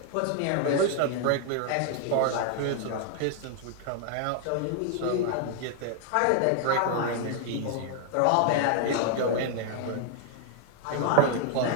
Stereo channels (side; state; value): both; different; correlation 0.00